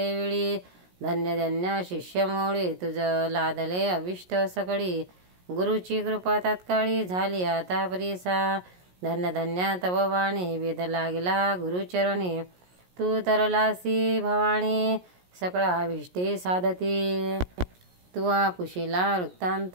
धन्य धन्य शिष्यमौळी तुझ लादले अभिष्ट सकळी गुरुची कृपा तात्काळी झाली आता परीसा। धन्य धन्य तव वाणी वेद लागला गुरुचरणी तू तरलासी भवानी सकळ अभिष्टे साधती। तुवा पुशिला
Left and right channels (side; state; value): left; late; 17 ms